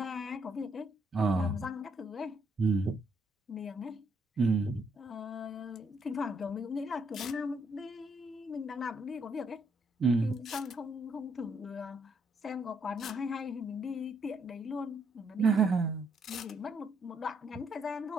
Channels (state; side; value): normal; both; correlation 0.73